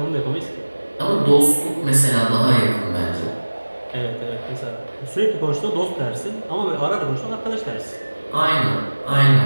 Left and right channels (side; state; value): both; inverted; correlation -1.00